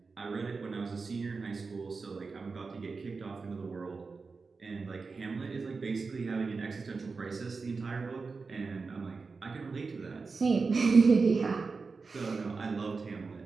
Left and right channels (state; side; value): quieter; left; 4.5 dB